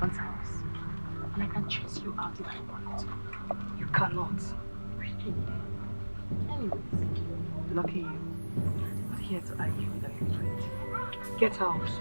house. And I can chase you out if I want. You cannot. Really? Anyways, lucky you. I'm not here to argue with an infant. Get out.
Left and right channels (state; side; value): inverted; both; correlation -1.00